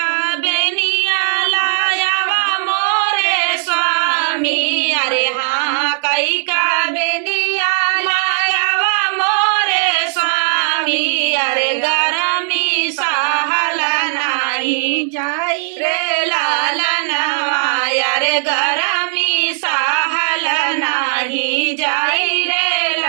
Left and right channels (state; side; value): silent; left; digital silence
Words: बेनिया लायावा मोरे स्वामी, अरे हाँ कई का बेनिया लायावा मोरे स्वामी, अरे गरमी सहल नाही जाई रे लालनवा, अरे गरमी सहल नाही जाई रे